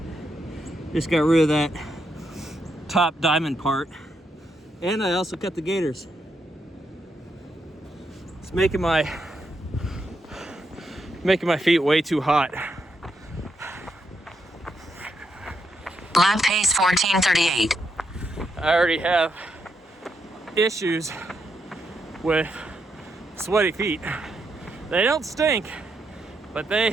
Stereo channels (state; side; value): normal; both; correlation 0.80